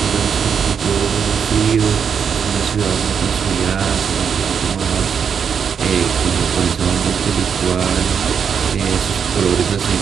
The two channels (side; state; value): left; quieter; 7.0 dB